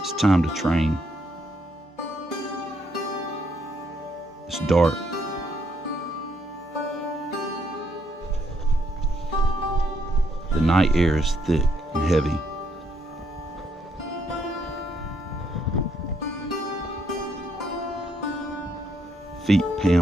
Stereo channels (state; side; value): normal; both; correlation 0.73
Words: It's time to train. It's dark. The night air is thick and heavy. Feet